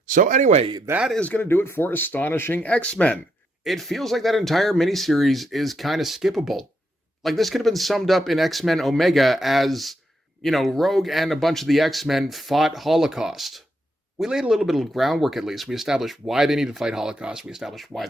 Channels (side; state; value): both; normal; correlation 0.79